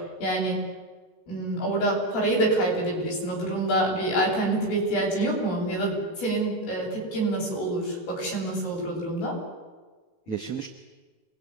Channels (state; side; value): late; right; 19 ms